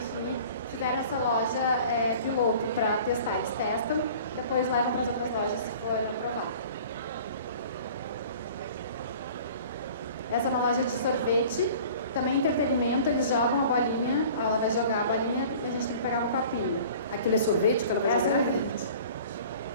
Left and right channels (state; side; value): inverted; both; correlation -0.46